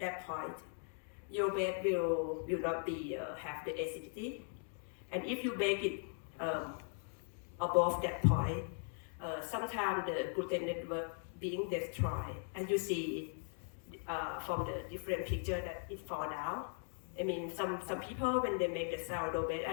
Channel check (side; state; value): right; silent; 52 dB below the other